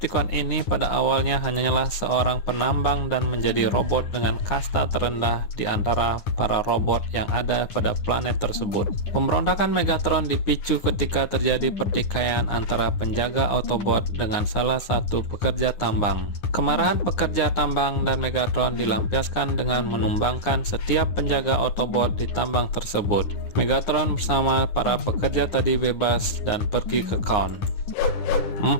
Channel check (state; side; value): late; right; 9.7 ms